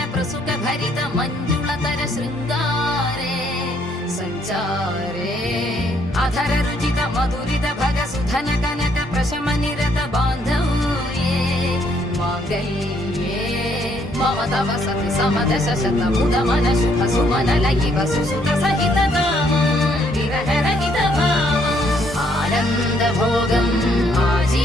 ప్రసుక భరిత మంజుళతర శృంగారే సంచారే అధర రుచిత మధురిత భగ సుధన కనక ప్రశమ నిరత బాంధవ్యే మాంగళ్యే మమ తవ సతి సమదశ శత ముద మన శుభ సుమన లయివ సుసుత సహిత కామం విరహ రహిత భావం ఆనంద భోగం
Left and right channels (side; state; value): both; normal; correlation 0.69